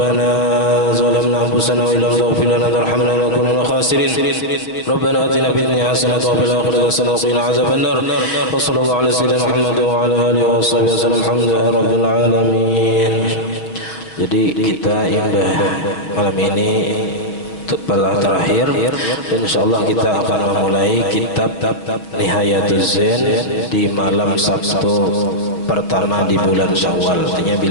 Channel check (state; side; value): late; right; 6.0 ms